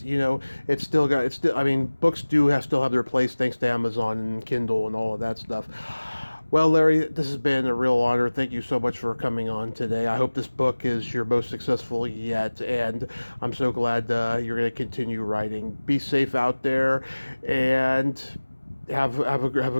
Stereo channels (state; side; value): inverted; both; correlation -1.00